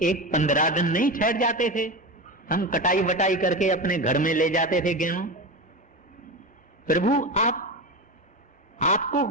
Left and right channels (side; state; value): both; normal; correlation 0.22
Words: 15 दिन नहीं ठहर जाते थे, हम कटाई वटाई करके अपने घर में ले जाते थे गेहूं। प्रभु आपको